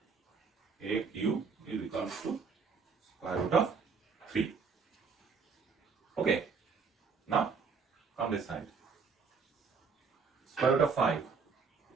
AQ is equals to square root of 3. Okay, now come this side. Square root of 5.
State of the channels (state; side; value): quieter; left; 5.3 dB